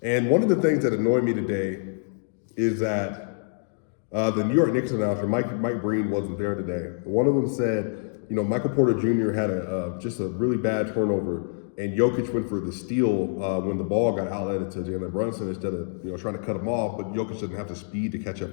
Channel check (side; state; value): right; silent; digital silence